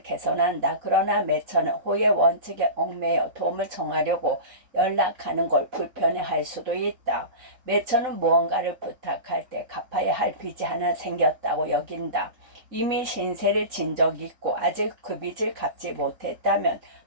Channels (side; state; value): left; late; 3.9 ms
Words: 개선한다. 그러나 매처는 호의 원칙에 얽매여 도움을 청하려고 연락하는 걸 불편해할 수도 있다. 매처는 무언가를 부탁할 때 갚아야 할 빚이 하나 생겼다고 여긴다. 이미 신세를 진 적이 있고 아직 그 빚을 갚지 못했다면